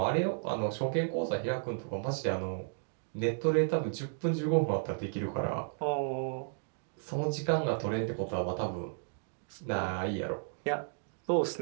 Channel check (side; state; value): left; silent; digital silence